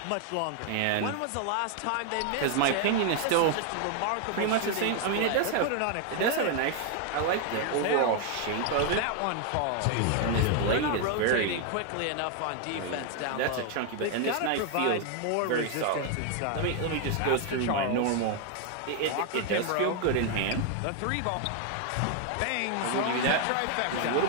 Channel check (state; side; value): different; both; correlation 0.00